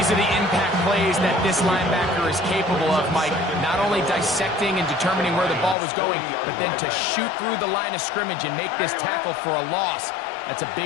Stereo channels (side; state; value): right; drops out; at 5.8 s